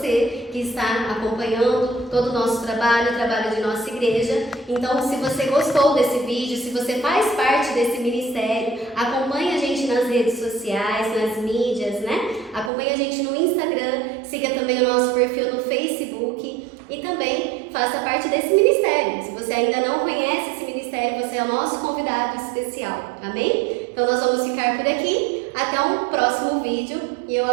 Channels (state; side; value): drops out; left; at 12.7 s